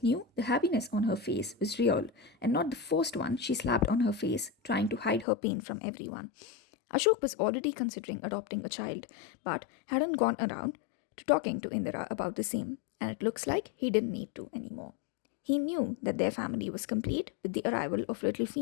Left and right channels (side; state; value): right; drops out; at 5.2 s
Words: knew the happiness on her face was real and not the forced one she slapped on her face, trying to hide her pain from everyone. Ashok was already considering adopting a child, but hadn't gone around to talking to Indira about the same, and it looks like he didn't need to anymore. He knew that their family was complete with the arrival of little